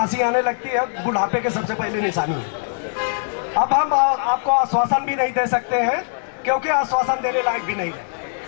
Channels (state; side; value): silent; right; digital silence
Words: आने लगती है, बुढ़ापे के सबसे पहले निशानी है। अब हम आपको आश्वासन भी नहीं दे सकते हैं, क्योंकि आश्वासन देने लायक भी नहीं है।